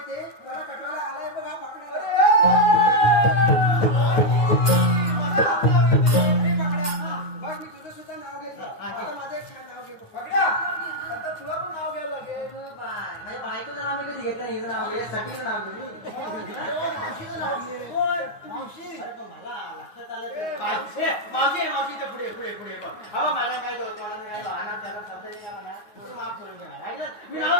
त्याला कटवायला आलाय बघा पकड्या. अरे पकड्या, बघ मी तुझं सुद्धा नाव घेतलं. आता माझं एक छान नाव घेतो. पकड्या, आता तुला पण नाव घ्यावं लागेल. माझ्या बायकोचं नाव मी कधी घेतलं हिचं नाव यासाठी नाव घेतलं मावशीचं नाव घे. मावशी. अरे पण मला लक्षात आलं ते. मावशी मावशी इथं पुढे पुढे पुढे बघ अहो मला काय दोस्त मला काय आना त्याला शब्द नाही काय म्हणा तुम्ही माफ करून घ्या मी नाव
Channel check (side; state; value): right; late; 9.3 ms